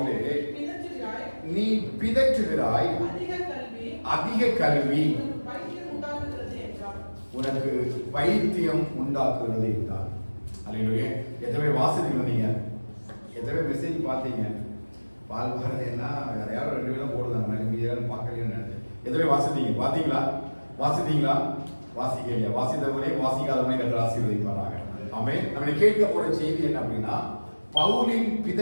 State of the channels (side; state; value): both; inverted; correlation -1.00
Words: நீ பிதற்றுகிறாய், அதிக கல்வி உனக்கு பைத்தியம் உண்டாக்குகிறது என்றார். அல்லேலூயா. எத்தனை வாசித்தீங்க? நீங்க எத்தனை மெசேஜ் பார்த்தீங்க? பால் பாரதி என்ன வேற யாரும் 2 பேரும் போடுறாங்க, மீதியாரும் பார்க்கலைன்னு நினைச்சேன். எத்தனை வாசித்தீங்க? பார்த்தீங்களா? வாசிக்கலையா? வாசித்தவரே வாசிக்காதவரே கர்த்தர் ஆசீர்வதிப்பாராக. ஆமென். நம்ம கேட்க போற செய்தி என்ன அப்படின்னா, பவுலின்